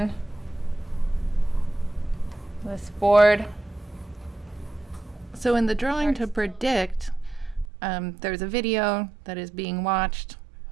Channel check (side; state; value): left; drops out; at 7.7 s